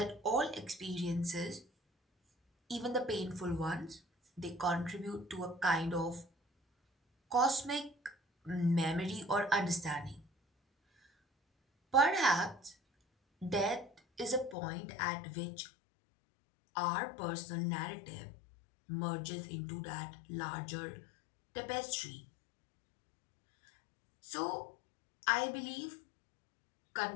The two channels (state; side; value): drops out; right; at 14.6 s